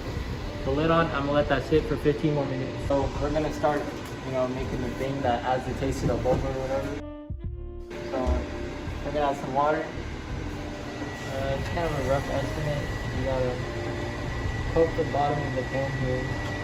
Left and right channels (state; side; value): identical; both; correlation 1.00